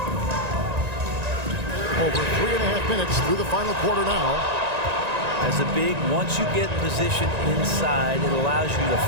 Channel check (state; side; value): late; left; 1.9 ms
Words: Over 3.5 minutes through the final quarter now. As a big, once you get positioned inside, it allows you to